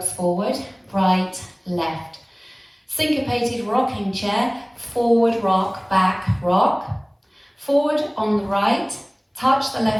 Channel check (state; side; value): identical; both; correlation 1.00